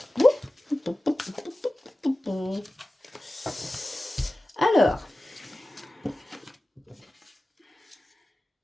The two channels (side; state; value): both; normal; correlation 0.96